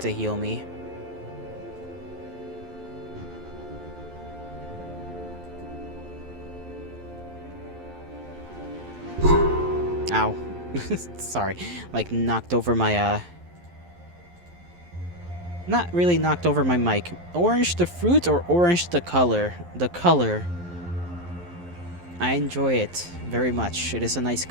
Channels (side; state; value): left; late; 11 ms